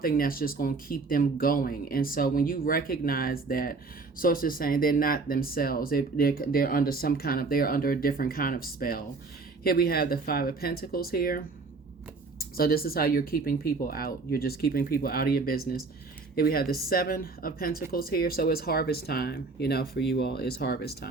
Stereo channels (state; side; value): quieter; left; 4.0 dB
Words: that's just going to keep them going. And so when you recognize that, sources saying they're not themselves, they're under they're under a different kind of spell. Here we have the 5 of Pentacles here. So this is how you're keeping people out. You're just keeping people out of your business. Here we have the 7 of Pentacles here. So it's harvest time, for you all. It's harvest